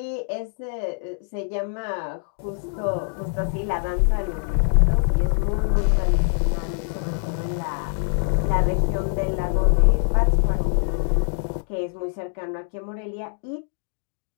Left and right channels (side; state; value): right; silent; digital silence